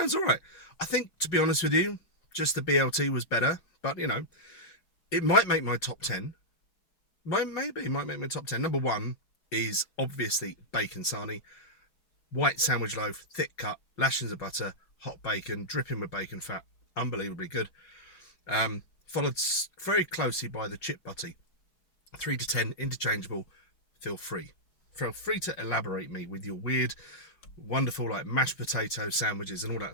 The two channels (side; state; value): right; late; 5.5 ms